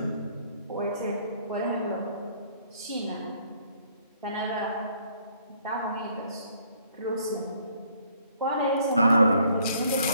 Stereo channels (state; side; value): inverted; both; correlation -0.63